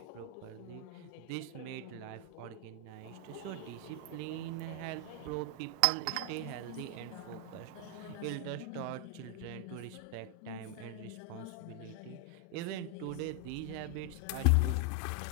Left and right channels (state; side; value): different; both; correlation 0.00